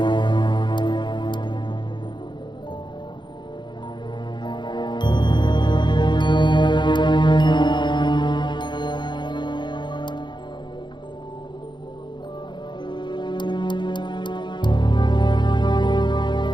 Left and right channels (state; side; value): late; right; 0.22 ms